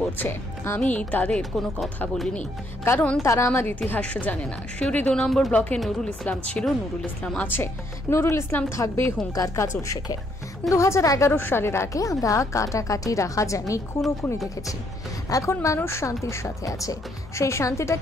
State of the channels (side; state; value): both; normal; correlation 0.71